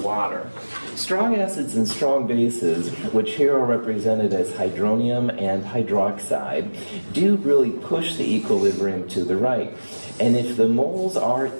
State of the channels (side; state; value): both; inverted; correlation -1.00